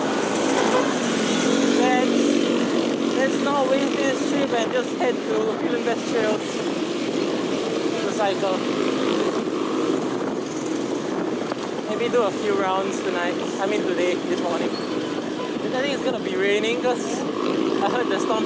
Let's not waste this trip and just head to Film Best Trails to cycle. Maybe do a few rounds tonight. I mean today, this morning. I think it's gonna be raining because I heard the storm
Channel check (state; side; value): identical; both; correlation 1.00